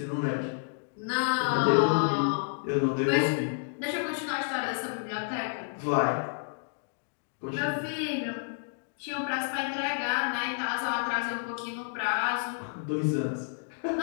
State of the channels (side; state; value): right; silent; digital silence